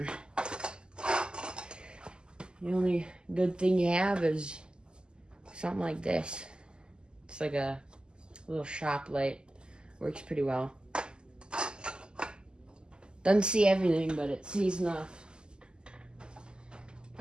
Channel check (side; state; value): left; late; 0.047 ms